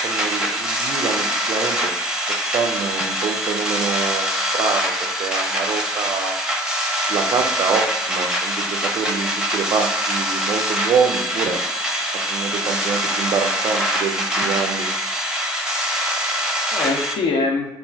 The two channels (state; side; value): normal; both; correlation 0.45